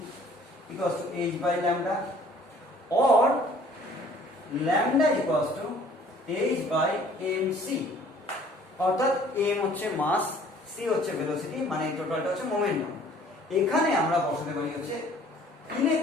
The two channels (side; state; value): both; normal; correlation 0.54